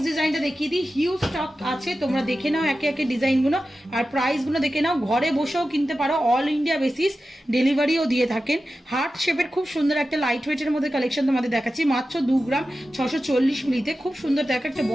ডিজাইনটা দেখিয়ে দিই। হিউজ স্টক আছে, তোমরা দেখে নাও একে একে ডিজাইনগুলো আর প্রাইসগুলো দেখে নাও। ঘরে বসেও কিনতে পারো, অল ইন্ডিয়া বেসিস ডেলিভারিও দিয়ে থাকেন। হার্ট শেপের খুব সুন্দর একটা লাইট ওয়েটের মধ্যে কালেকশন তোমাদের দেখাচ্ছি, মাত্র 2 গ্রাম 640 মিলিতে। খুব সুন্দর দেখো একটা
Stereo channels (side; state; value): both; normal; correlation 0.93